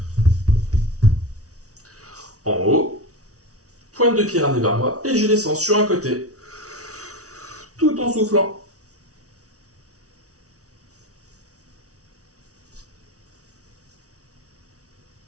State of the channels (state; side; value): late; left; 0.66 ms